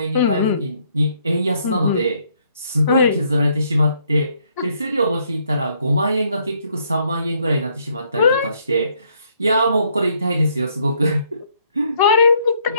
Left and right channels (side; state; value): both; inverted; correlation -0.69